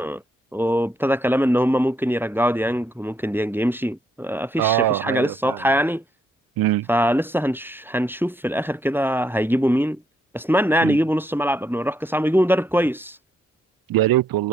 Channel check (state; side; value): normal; both; correlation 0.73